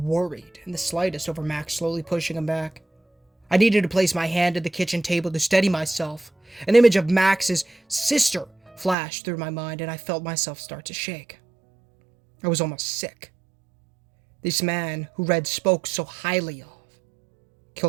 in the slightest over Max slowly pushing him back. I needed to place my hand at the kitchen table to steady myself. An image of Max's sister flashed through my mind, and I felt myself start to shake. I was almost sick. This man who Red spoke so highly of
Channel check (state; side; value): drops out; left; at 9.0 s